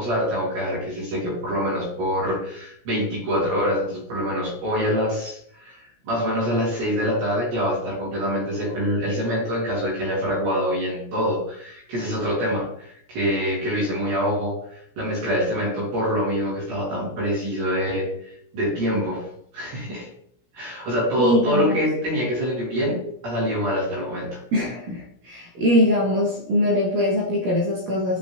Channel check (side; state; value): left; late; 17 ms